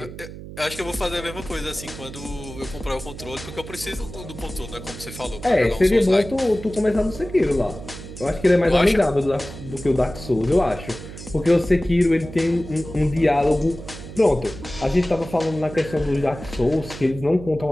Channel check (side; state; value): right; noise; hum, 13 dB below the sound